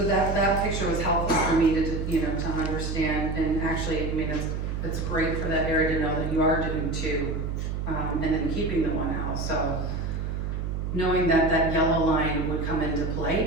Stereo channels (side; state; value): right; noise; hum, 3 dB below the sound